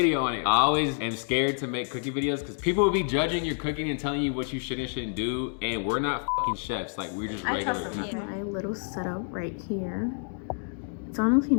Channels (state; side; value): silent; right; 58 dB below the other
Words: on it. I always am scared to make cooking videos because people will be judging your cooking and telling you what you should and shouldn't do. And we're not fucking chefs. Like, we're just regular people. My little setup right here. It's honestly